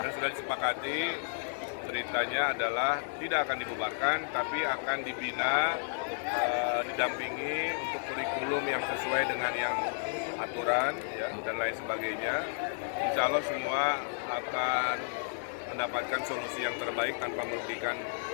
sudah disepakati beritanya adalah tidak akan dibubarkan, tapi akan dibina, didampingi untuk kurikulum yang sesuai dengan yang aturan ya, dan lain sebagainya. Insya Allah semua akan mendapatkan solusi yang terbaik tanpa merugikan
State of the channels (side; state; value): right; silent; digital silence